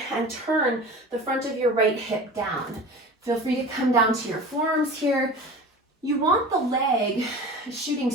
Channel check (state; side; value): normal; both; correlation 0.36